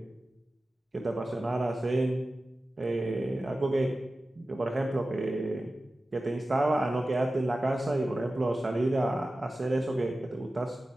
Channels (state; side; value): normal; both; correlation 0.95